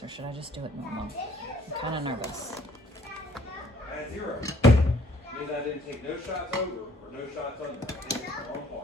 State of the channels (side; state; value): both; normal; correlation 0.60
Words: or should I just do it normal? I'm kind of nervous. At 0. Means I didn't take no shots over or no shots under. I think it's the wrong